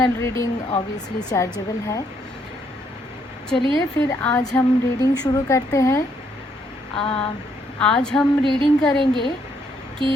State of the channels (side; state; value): both; normal; correlation 0.72